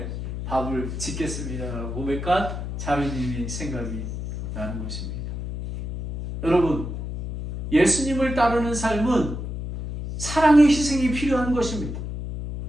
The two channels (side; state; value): left; noise; hum, 6 dB below the sound